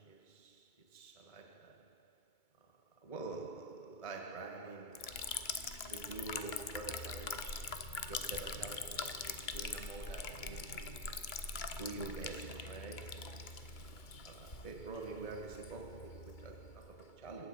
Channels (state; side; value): late; right; 2.3 ms